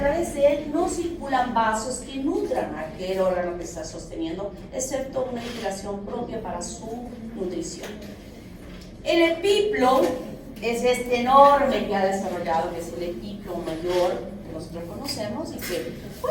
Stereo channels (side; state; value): both; identical; correlation 1.00